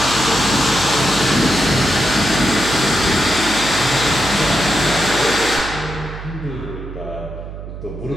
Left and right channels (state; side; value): noise; right; hum, 11 dB below the sound